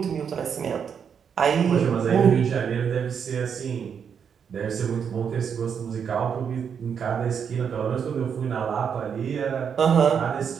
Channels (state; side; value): quieter; left; 7.2 dB